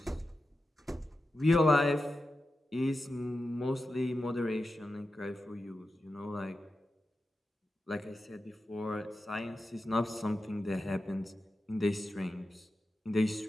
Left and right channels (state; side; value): normal; both; correlation 0.91